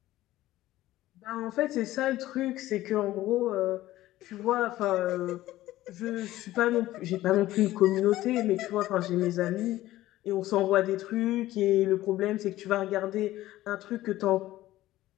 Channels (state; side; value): quieter; right; 15.6 dB